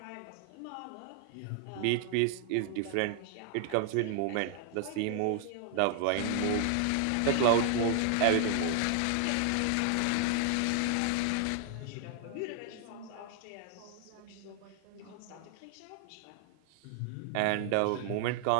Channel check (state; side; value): different; both; correlation 0.00